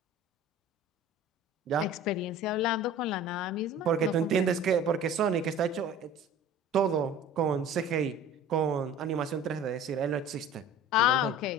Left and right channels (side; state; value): both; normal; correlation 0.42